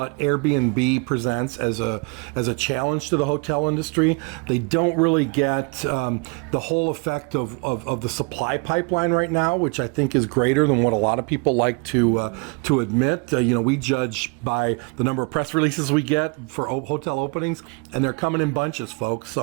Airbnb presents as a challenge to the hotel industry. They don't really get the whole effect of the supply pipeline right now, which I think is greater than what a lot of people like to admit. We judge by the number of press releases we get for hotel openings, and they're coming in bunches, folks.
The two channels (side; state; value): left; quieter; 32.1 dB